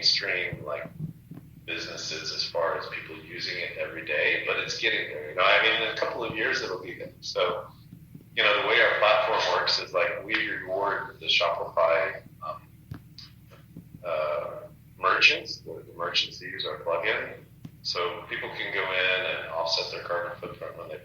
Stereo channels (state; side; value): identical; both; correlation 1.00